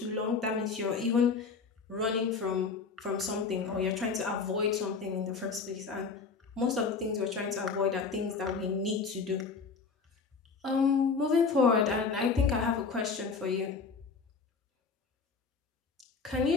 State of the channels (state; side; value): quieter; right; 5.0 dB